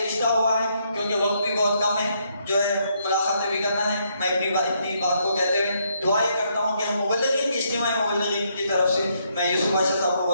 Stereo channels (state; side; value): inverted; both; correlation -0.74